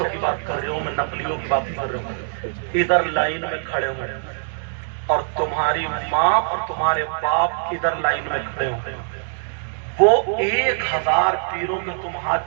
کی بات کر رہے ہوں، میں نقلیوں کی بات کر رہا ہوں، ادھر لائن میں کھڑے ہوئے، اور تمہاری ماں اور تمہارے باپ ادھر لائن میں کھڑے ہوئے، وہ 1000 پیروں کے تم ہاتھ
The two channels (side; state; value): left; silent; digital silence